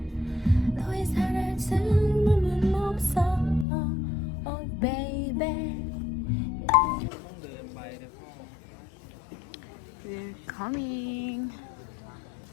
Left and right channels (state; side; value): drops out; right; at 3.7 s